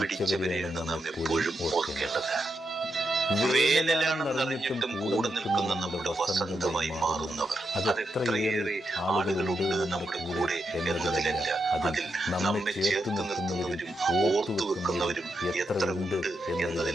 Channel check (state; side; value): normal; both; correlation 0.84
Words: നാം എപ്പോഴും ഓർക്കേണ്ടത്. വേനലാണെന്ന് അറിഞ്ഞിട്ടും കൂടെ നിൽക്കുന്ന നമ്മുടെ വസന്തമായി മാറുന്നവർ, അതെത്രയേറെ ആളുകളുണ്ട് നമ്മുടെ കൂടെ എന്നതിലല്ല, അതിൽ നമ്മെ ചേർത്ത് നിർത്തുന്നവരും ഓർത്തു വെക്കുന്നവരും എത്ര ഉണ്ട്